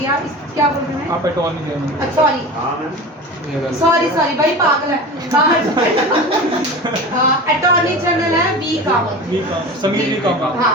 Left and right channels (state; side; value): normal; both; correlation 0.32